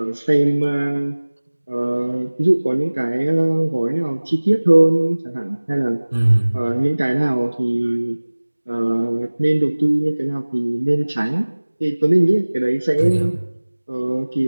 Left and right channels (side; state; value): both; inverted; correlation -1.00